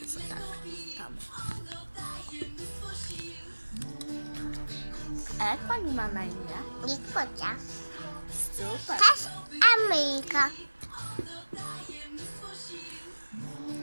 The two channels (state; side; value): inverted; both; correlation -1.00